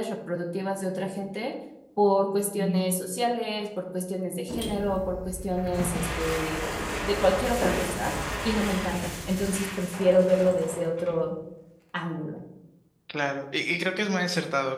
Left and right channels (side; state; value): both; identical; correlation 1.00